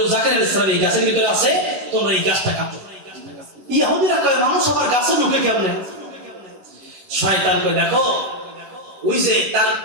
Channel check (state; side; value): late; left; 11 ms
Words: জাকারিয়া আলাইহিস সালাম এই গাছের ভিতরে আছে, তোমরা এই গাছটা কাটো। ইহুদিরা কয়, মানুষ আবার গাছে ঢুকে কেমনে? শয়তান কয়, দেখো ওই যে তার